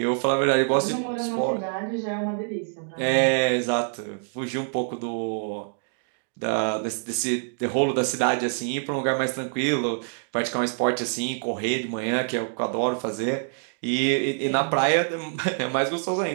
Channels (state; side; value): silent; left; digital silence